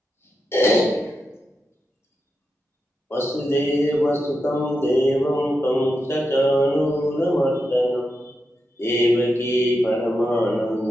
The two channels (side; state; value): both; normal; correlation 0.87